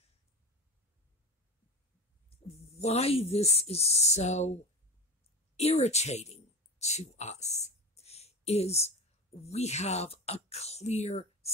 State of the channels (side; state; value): both; normal; correlation 0.26